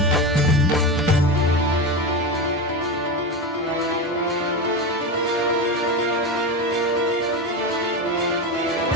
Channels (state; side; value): normal; both; correlation 0.19